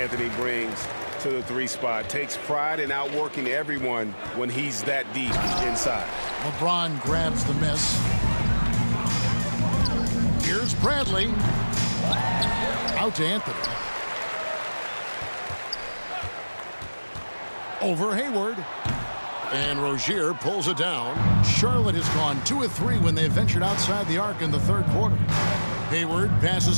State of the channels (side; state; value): both; inverted; correlation -1.00